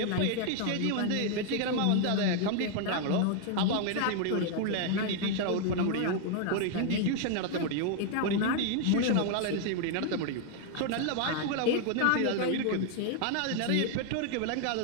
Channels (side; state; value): both; different; correlation 0.00